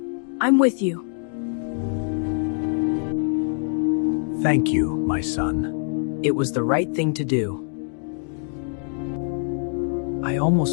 I'm with you. Thank you, my son. It was the right thing to do. I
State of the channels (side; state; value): right; silent; 55 dB below the other